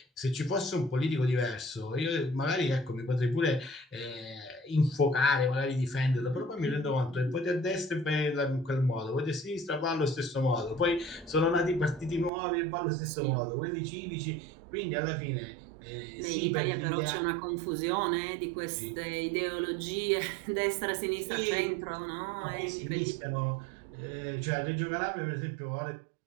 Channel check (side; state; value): left; drops out; at 12.3 s